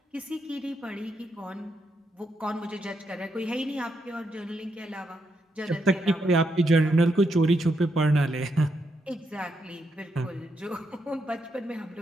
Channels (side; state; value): both; normal; correlation 0.80